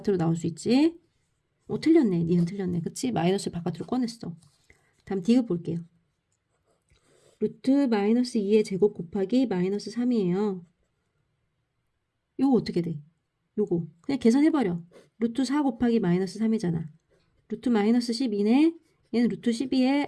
나올 수 있지? 틀렸네. 니은 틀렸네. 그치? 마이너스를 바깥으로 꺼냈어. 다음 디귿 볼게요. 루트 마이너스 2의 제곱 곱하기 마이너스 3이에요. 요거 어떻게 돼? 요거 그냥 계산해버려. 루트 4 곱하기 마이너스 3이잖아. 루트 마이너스 12네. 얘는 루트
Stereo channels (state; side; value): identical; both; correlation 1.00